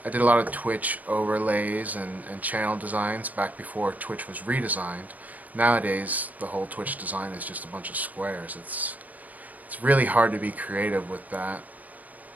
did a lot of Twitch overlays and channel designs back before Twitch was redesigned. Nowadays, the whole Twitch design is just a bunch of squares. It's really hard to be creative with that,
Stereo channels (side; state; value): left; late; 0.078 ms